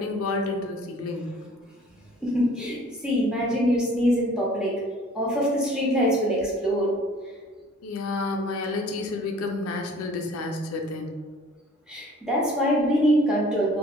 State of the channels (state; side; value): normal; both; correlation 0.51